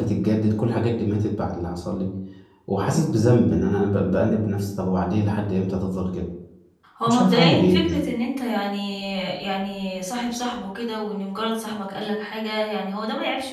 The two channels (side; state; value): both; identical; correlation 1.00